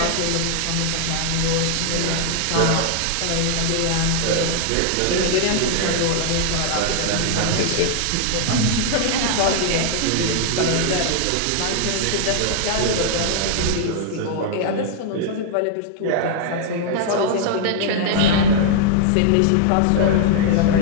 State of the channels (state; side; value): different; both; correlation -0.01